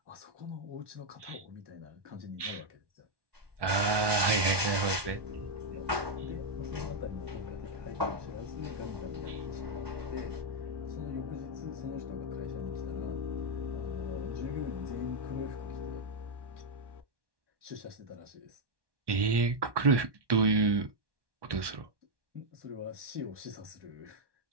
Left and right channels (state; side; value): late; left; 1.2 ms